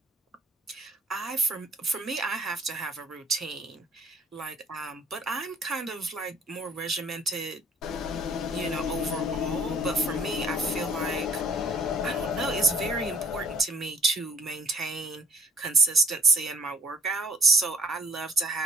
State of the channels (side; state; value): both; normal; correlation 0.56